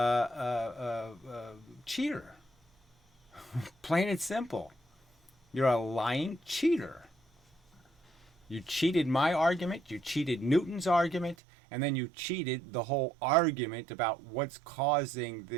cheater. Plain and simple. You're a lying cheater. You cheated my argument, you cheated Newton's argument, and then you cheated the whole argument about what's causing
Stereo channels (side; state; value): left; drops out; at 11.4 s